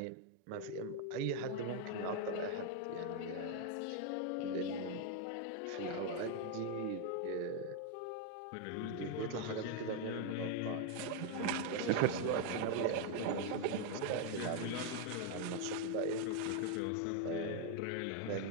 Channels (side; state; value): both; different; correlation 0.01